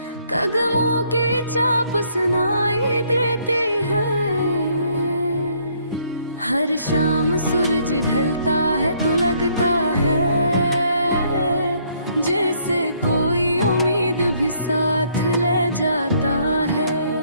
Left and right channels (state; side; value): inverted; both; correlation -0.67